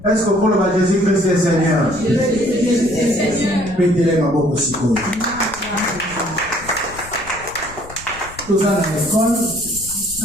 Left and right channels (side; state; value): left; noise; rumble, 17 dB below the sound